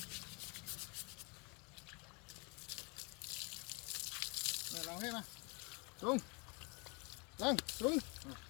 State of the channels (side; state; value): right; quieter; 31.4 dB